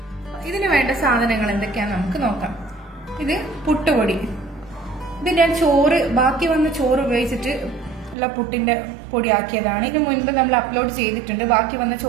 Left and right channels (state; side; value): drops out; left; at 8.2 s